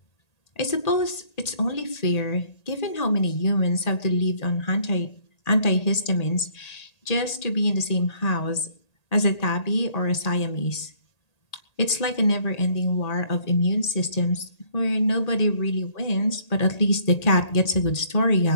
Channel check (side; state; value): right; late; 1.8 ms